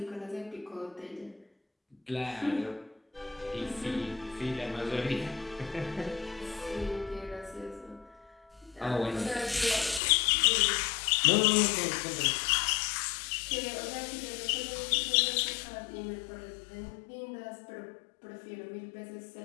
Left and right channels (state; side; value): drops out; right; at 10.0 s